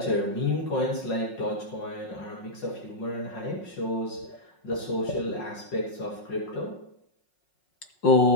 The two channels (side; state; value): right; late; 5.5 ms